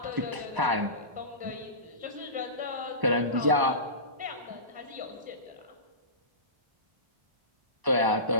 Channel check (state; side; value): late; left; 1.0 ms